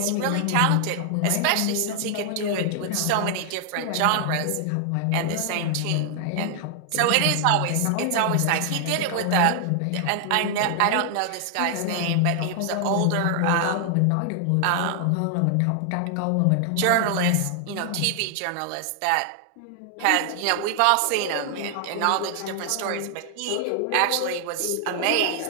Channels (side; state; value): both; different; correlation 0.00